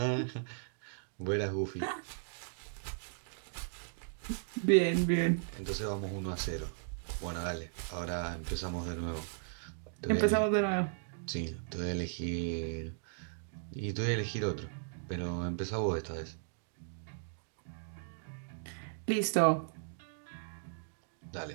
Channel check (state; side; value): silent; left; digital silence